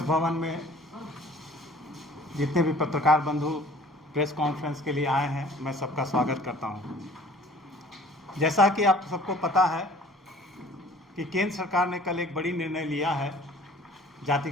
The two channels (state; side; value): normal; both; correlation 0.50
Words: भवन में जितने भी पत्रकार बंधु प्रेस कॉन्फ्रेंस के लिए आए हैं, मैं सबका स्वागत करता हूं। जैसा कि आप सबको पता है कि केंद्र सरकार ने कल एक बड़ी निर्णय लिया है